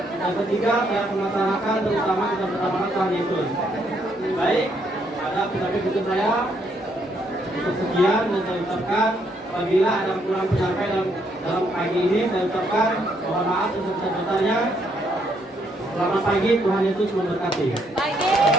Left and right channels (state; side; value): normal; both; correlation 0.72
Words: Dan ketiga, saya akan melaksanakan terutama kita bersama Tuhan Yesus. Baik, ada pidato saya untuk sekian, dan saya ucapkan apabila ada kurang penyampaian dalam pagi ini, saya ucapkan mohon maaf sebesar-besarnya. Selamat pagi, Tuhan Yesus memberkati. Baik,